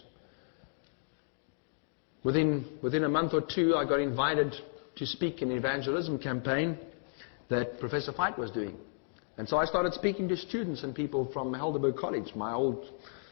Within a month or two, I got invited to speak in an evangelism campaign that Professor Fight was doing. And so I started speaking to students and people from Helderberg College, my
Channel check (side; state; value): right; silent; digital silence